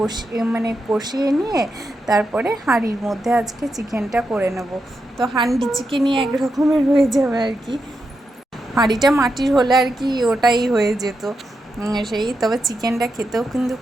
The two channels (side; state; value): both; normal; correlation 0.86